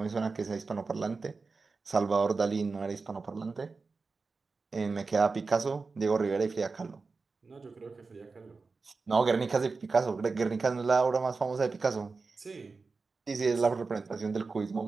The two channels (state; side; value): quieter; left; 4.2 dB